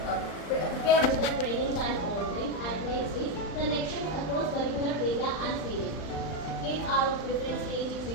prepared with the trainings and all things. And next is connection across curricular area and stages. Kids are of different stages,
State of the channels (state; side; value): late; right; 39 ms